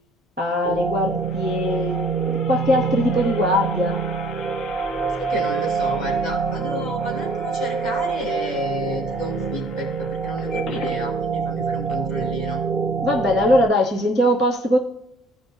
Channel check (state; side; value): normal; both; correlation 0.55